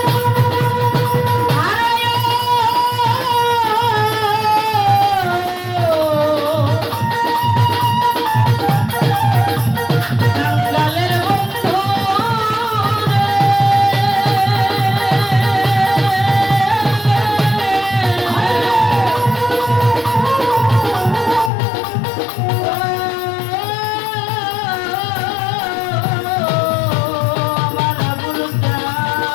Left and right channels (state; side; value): drops out; right; at 21.5 s